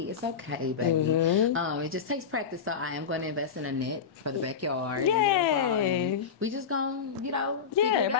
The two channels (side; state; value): right; quieter; 6.5 dB